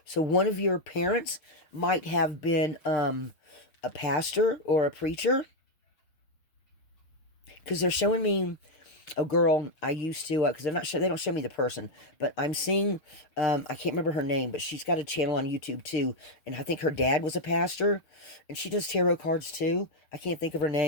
So one of your parents might have been a pastor or a preacher. Because they're showing me a girl I used to, because they don't show me the person, but I'm seeing, I can't remember her name, but she's got a channel on YouTube too, and I think her dad was a pastor, and she does tarot cards too. I can't think of her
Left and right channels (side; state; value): right; late; 6.6 ms